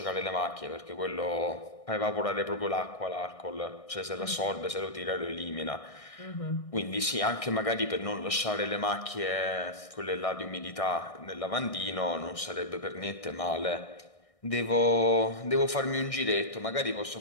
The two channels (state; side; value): late; right; 1.6 ms